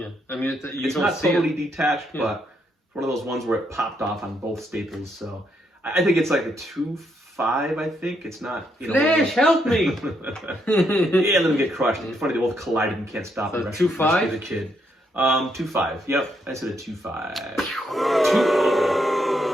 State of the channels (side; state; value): both; normal; correlation 0.76